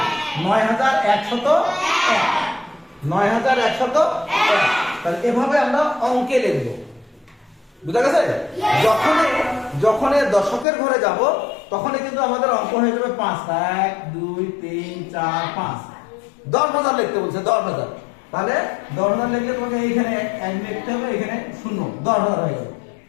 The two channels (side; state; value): right; drops out; at 10.7 s